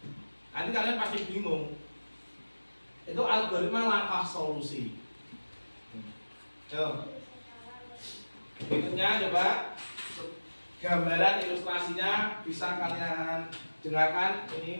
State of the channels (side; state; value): both; inverted; correlation -1.00